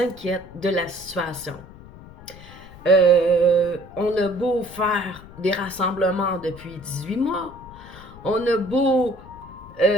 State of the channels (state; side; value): noise; left; rumble, 18 dB below the sound